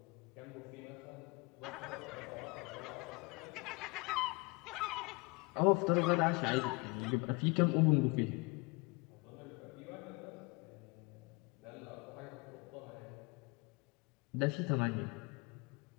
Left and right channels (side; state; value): right; quieter; 28.1 dB